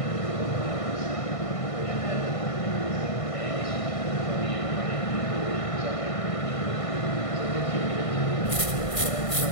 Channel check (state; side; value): late; right; 1.5 ms